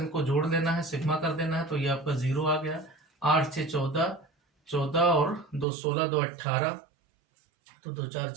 जोड़ लेना है, सिग्मा कर देना है, तो ये आपका 0 आ गया। 8 6 14, 14 और 2 16, 2 18, तो 2 4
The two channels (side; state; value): left; drops out; at 5.7 s